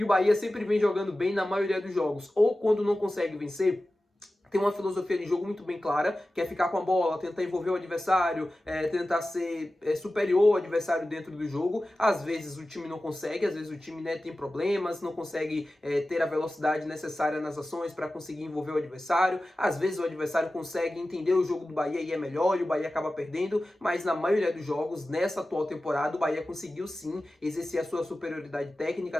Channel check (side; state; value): both; normal; correlation 0.95